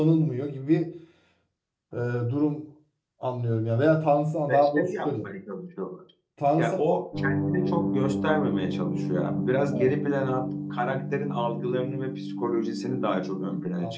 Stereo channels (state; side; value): identical; both; correlation 1.00